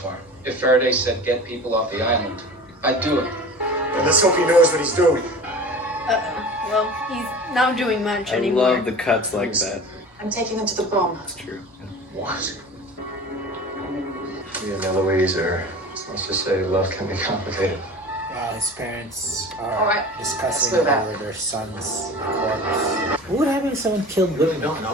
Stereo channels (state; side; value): normal; both; correlation 0.37